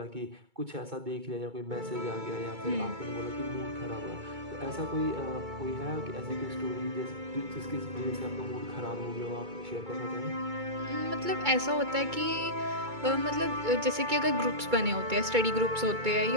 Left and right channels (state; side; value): late; left; 2.2 ms